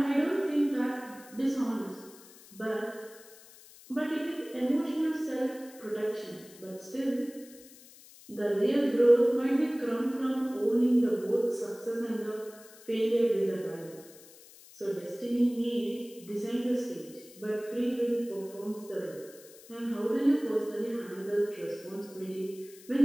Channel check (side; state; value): left; noise; hiss, 21 dB below the sound